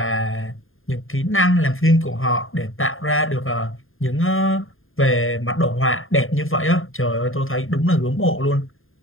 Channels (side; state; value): right; late; 0.60 ms